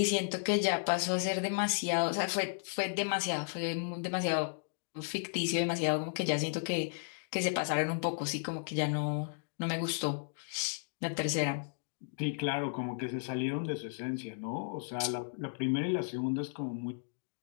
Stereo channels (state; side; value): silent; right; digital silence